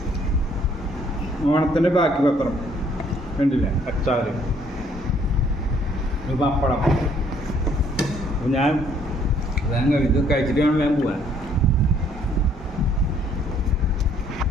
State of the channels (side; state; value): both; normal; correlation 0.63